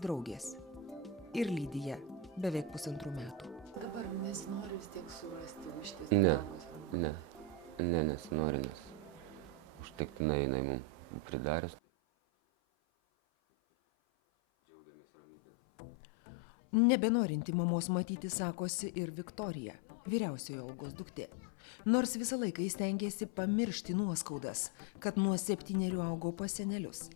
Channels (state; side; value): drops out; right; at 11.8 s